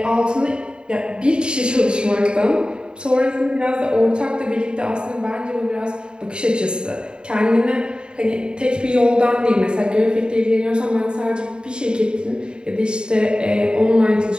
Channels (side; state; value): left; late; 0.050 ms